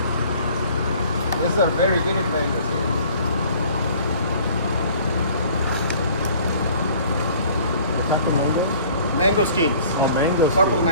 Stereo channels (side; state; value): both; inverted; correlation -0.52